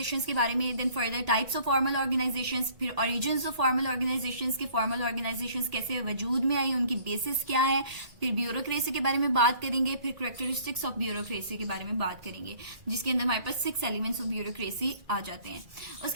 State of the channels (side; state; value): left; late; 2.0 ms